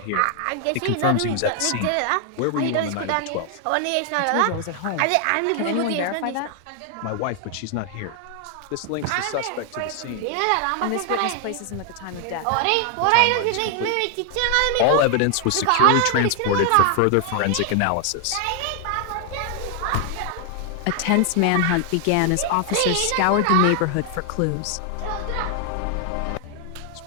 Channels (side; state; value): both; different; correlation 0.00